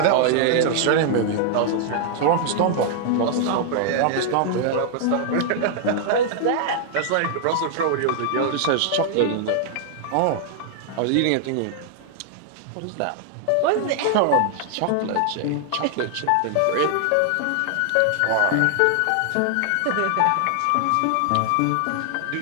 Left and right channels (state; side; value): different; both; correlation 0.00